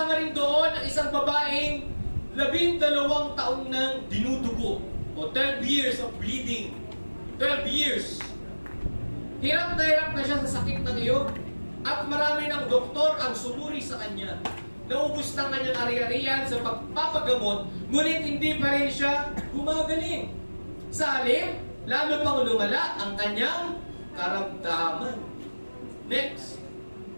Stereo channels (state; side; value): inverted; both; correlation -1.00